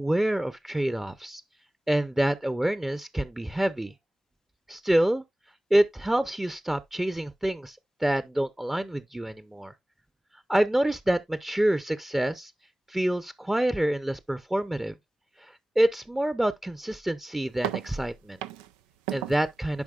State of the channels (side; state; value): both; normal; correlation 0.98